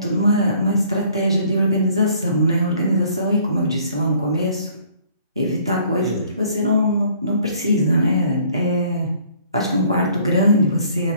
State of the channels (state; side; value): inverted; both; correlation -0.59